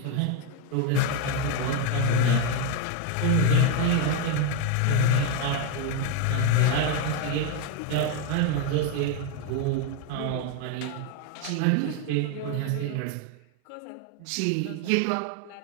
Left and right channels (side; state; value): both; different; correlation 0.01